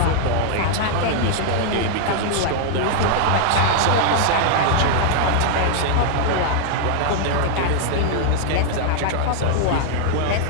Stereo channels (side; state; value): both; different; correlation -0.01